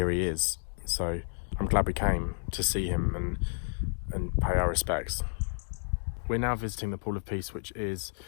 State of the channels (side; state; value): right; silent; digital silence